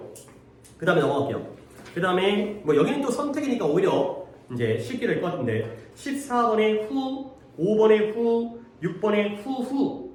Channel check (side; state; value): both; identical; correlation 1.00